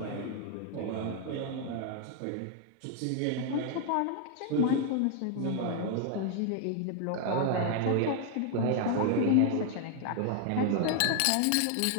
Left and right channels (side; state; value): both; different; correlation 0.00